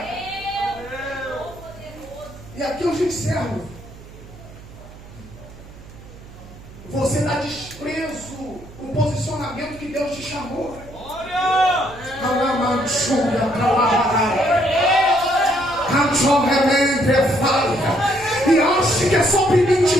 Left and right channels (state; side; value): noise; right; hum, 18 dB below the sound